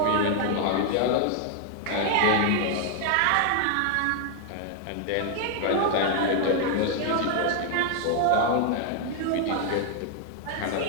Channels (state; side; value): different; both; correlation 0.00